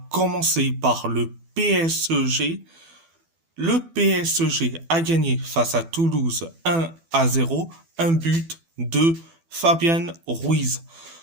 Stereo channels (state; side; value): late; left; 12 ms